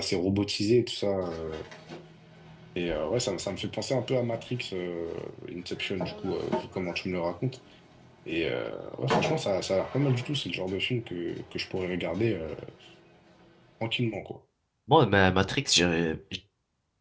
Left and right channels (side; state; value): both; identical; correlation 1.00